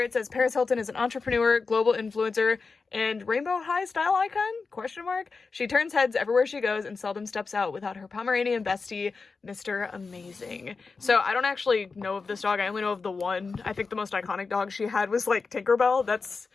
it says Paris Hilton is an entrepreneur, global influencer, and Rainbow High style icon, question mark. She turns heads everywhere she goes and seldom steps out without her Pomeranian bestie, Mr. Amazing. So I don't actually know of this dog. I only know of the one. I think the most iconic dog she had was like Tinkerbell. That's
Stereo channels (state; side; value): quieter; right; 4.5 dB